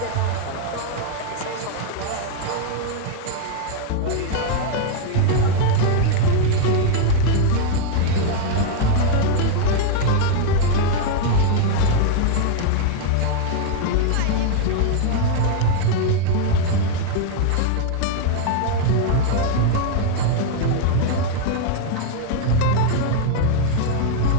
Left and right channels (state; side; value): different; both; correlation 0.00